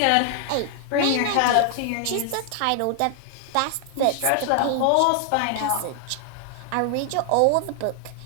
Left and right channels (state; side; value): different; both; correlation 0.00